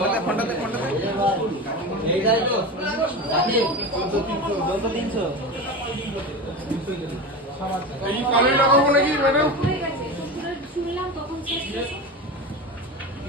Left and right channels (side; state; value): both; normal; correlation 0.25